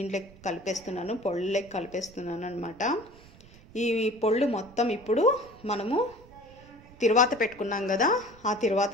కలిపేస్తున్నాను, పొళ్ళకి కలిపేస్తున్నాను అనమాట. ఈ పొళ్ళు మొత్తం ఇప్పుడు మనము తిరువాత పెట్టుకున్నాం కదా, ఆ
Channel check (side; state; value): right; noise; rumble, 22 dB below the sound